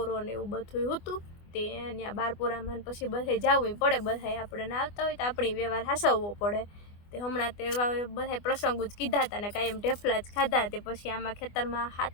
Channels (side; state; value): right; late; 24 ms